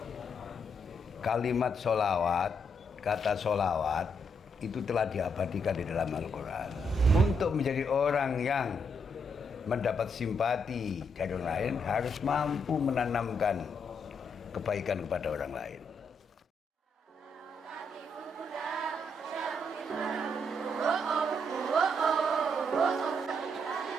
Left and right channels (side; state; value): both; normal; correlation 0.77